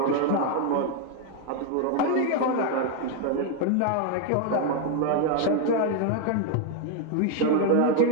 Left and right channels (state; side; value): different; both; correlation 0.01